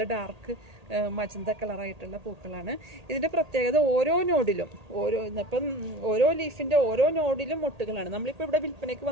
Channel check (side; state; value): left; late; 1.8 ms